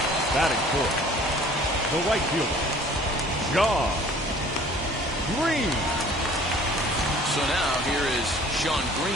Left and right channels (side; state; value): both; normal; correlation 0.51